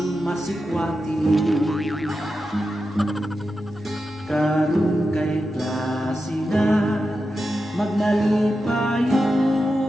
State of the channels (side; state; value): both; normal; correlation 0.90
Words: masikwati. Karong kay klase na magnalipayo